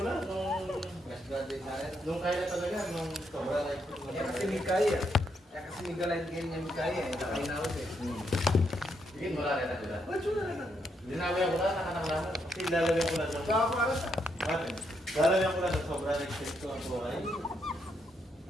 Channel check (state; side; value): normal; both; correlation 0.78